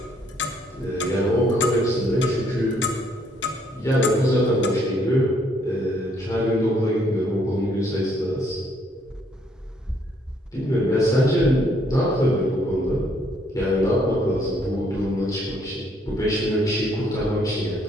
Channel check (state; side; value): normal; both; correlation 0.68